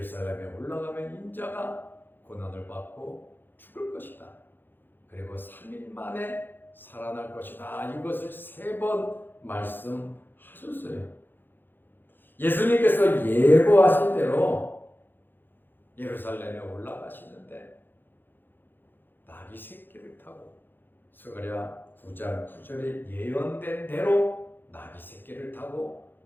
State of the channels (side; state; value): right; late; 0.096 ms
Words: 올라가면 인자가 고난을 받고 죽을 것이다. 그리고 3일 만에 살아날 것이다. 이것을 3번 말씀하셨어요. 예수님께서 예고하신 대로 예루살렘에 올라가시는데 나귀 새끼를 타고 스가랴 9장 9절에 예언된 대로 나귀 새끼를 타고